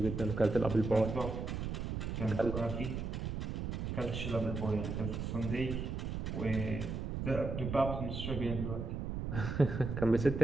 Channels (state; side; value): noise; right; rumble, 4 dB below the sound